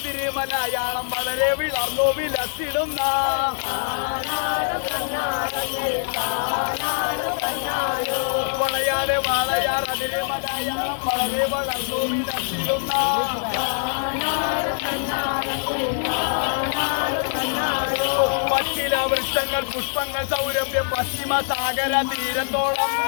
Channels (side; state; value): right; silent; digital silence